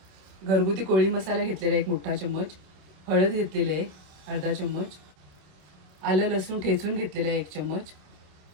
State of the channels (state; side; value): late; left; 27 ms